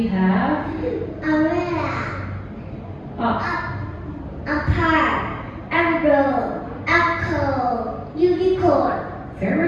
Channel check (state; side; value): identical; both; correlation 1.00